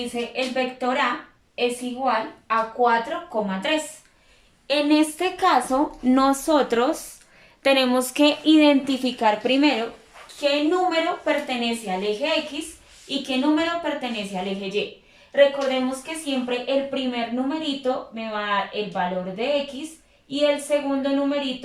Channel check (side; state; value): both; identical; correlation 1.00